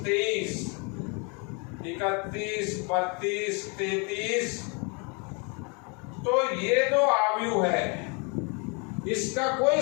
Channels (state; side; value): quieter; right; 33.5 dB